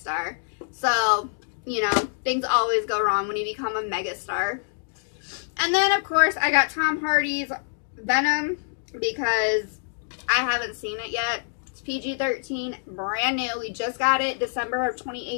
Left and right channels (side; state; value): right; silent; digital silence